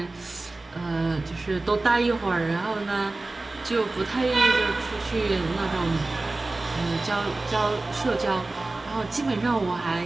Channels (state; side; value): quieter; left; 3.1 dB